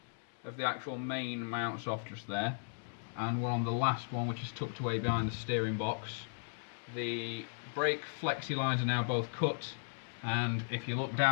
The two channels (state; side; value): silent; right; digital silence